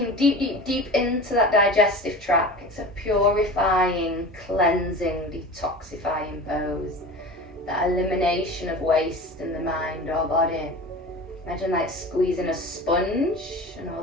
deep, deep, deep into that digestive tract. It's a purifying, cleansing, detoxifying pose. That elimination of waste in the mind or body. Imagine like squeezing a sponge and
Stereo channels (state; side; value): normal; both; correlation 0.34